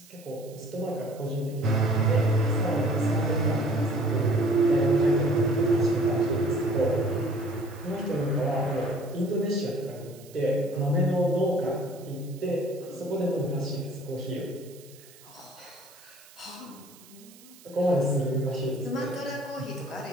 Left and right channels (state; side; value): noise; right; hiss, 23 dB below the sound